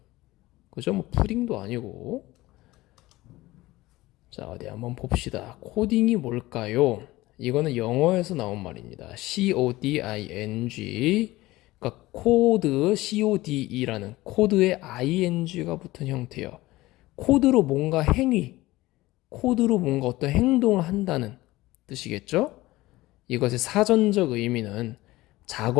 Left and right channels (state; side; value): quieter; right; 18.6 dB